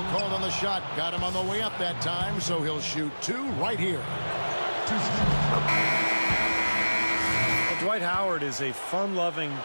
called on the shot. Got him on the way up that time, so he'll shoot 2 right here. Well, Dwight Howard is a fun-loving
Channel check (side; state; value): both; inverted; correlation -1.00